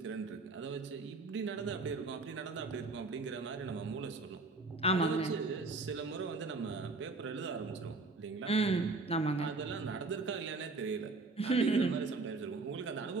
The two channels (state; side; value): quieter; left; 3.6 dB